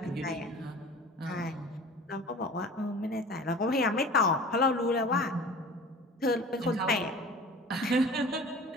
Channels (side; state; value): both; normal; correlation 0.41